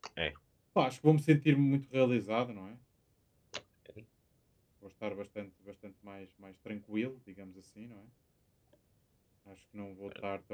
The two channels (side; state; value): both; identical; correlation 1.00